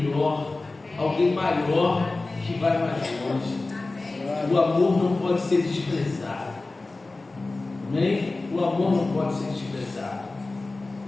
alguém maior, que vai mais longe. O amor não pode ser desprezado. Amém? O amor não pode ser desprezado.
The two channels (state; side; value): quieter; right; 3.3 dB